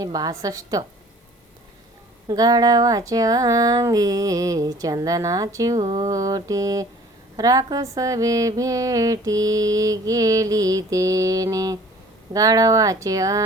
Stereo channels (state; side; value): normal; both; correlation 0.50